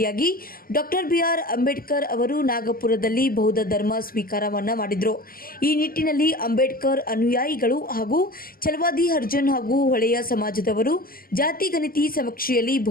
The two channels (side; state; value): right; late; 0.42 ms